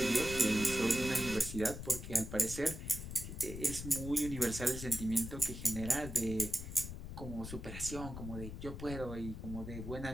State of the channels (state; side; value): noise; left; rumble, 8 dB below the sound